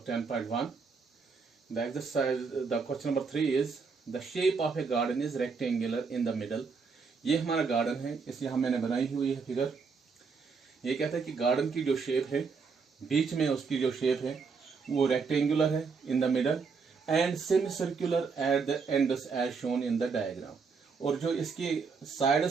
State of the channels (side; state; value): left; quieter; 5.1 dB